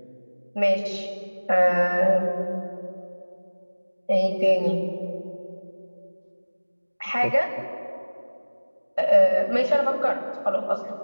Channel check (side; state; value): both; inverted; correlation -1.00